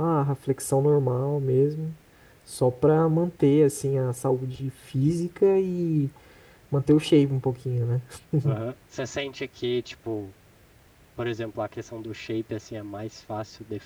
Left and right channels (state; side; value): identical; both; correlation 1.00